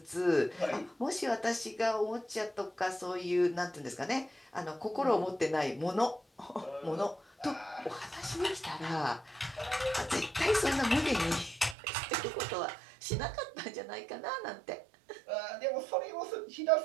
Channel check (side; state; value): left; drops out; at 11.8 s